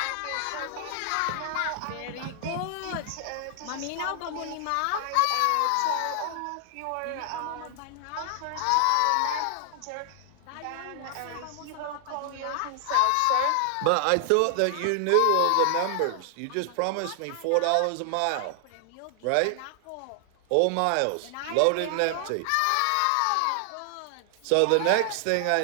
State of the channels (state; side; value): different; both; correlation 0.00